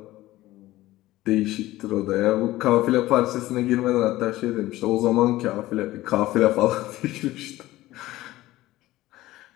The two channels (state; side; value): quieter; right; 16.7 dB